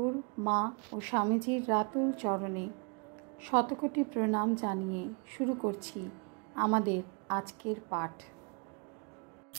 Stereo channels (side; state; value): left; quieter; 35.3 dB